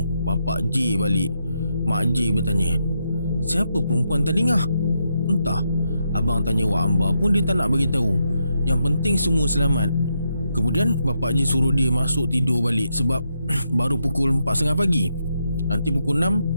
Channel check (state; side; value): inverted; both; correlation -0.82